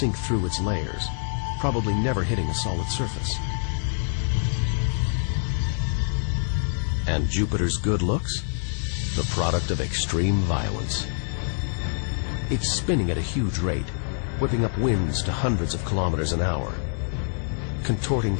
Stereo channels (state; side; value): silent; right; digital silence